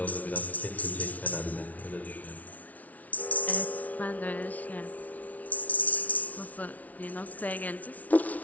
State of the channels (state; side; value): late; right; 0.072 ms